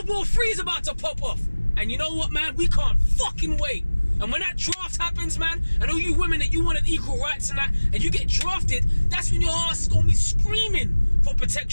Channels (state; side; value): inverted; both; correlation -1.00